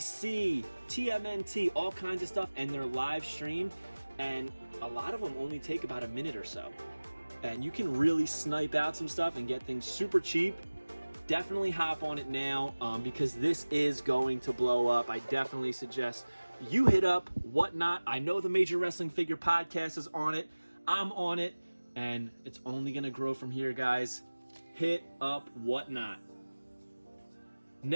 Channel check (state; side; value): inverted; both; correlation -1.00